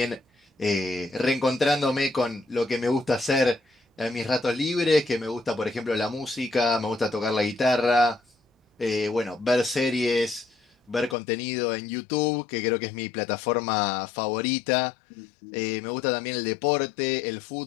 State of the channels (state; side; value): drops out; right; at 11.2 s